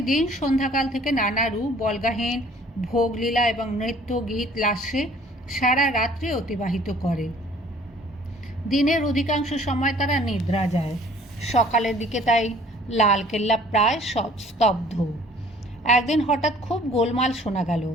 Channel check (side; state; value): both; normal; correlation 0.54